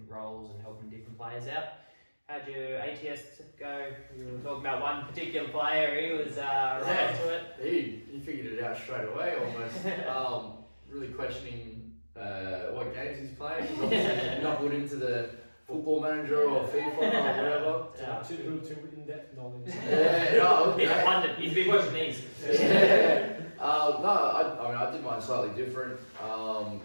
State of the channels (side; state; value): both; inverted; correlation -1.00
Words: roles and helping different players out. How'd your ATS go? You were talking about one particular player, he was right into it. He figured it out straight away almost. Really questioning what games he's playing. He's obviously knuckled into the Football Manager or FIFA or whatever. Too in-depth knowledge. He's been watching these. I did mine slightly different. I